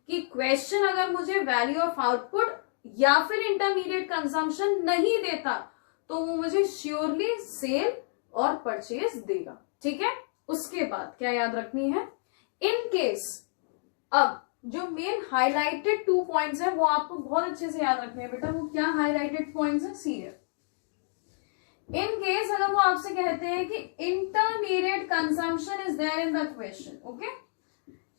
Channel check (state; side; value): silent; right; digital silence